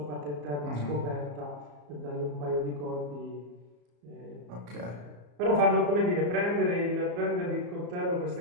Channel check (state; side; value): late; left; 34 ms